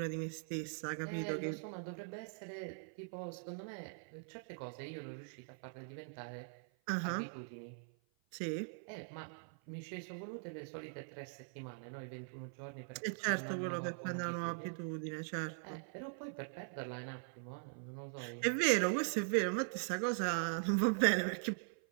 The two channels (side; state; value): left; silent; 50 dB below the other